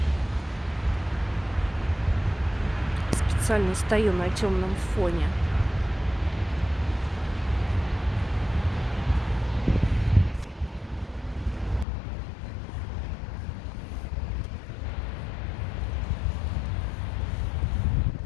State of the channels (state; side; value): drops out; right; at 11.9 s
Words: Специально стою на темном фоне.